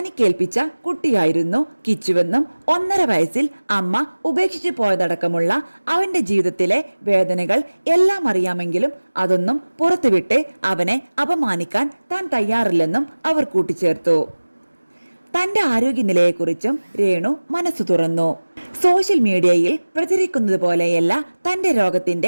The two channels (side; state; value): both; inverted; correlation -1.00